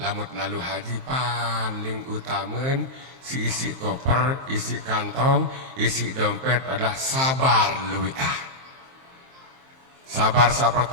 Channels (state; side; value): late; left; 23 ms